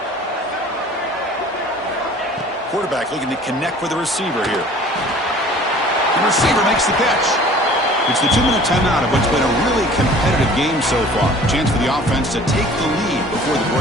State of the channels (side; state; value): both; normal; correlation 0.48